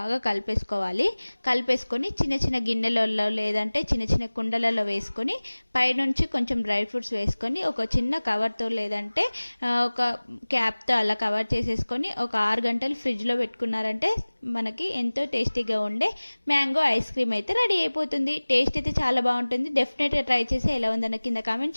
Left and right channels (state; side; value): inverted; both; correlation -1.00